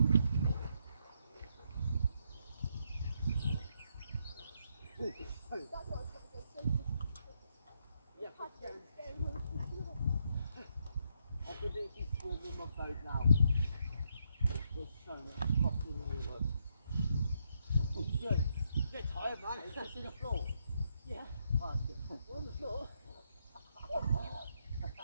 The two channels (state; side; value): inverted; both; correlation -0.77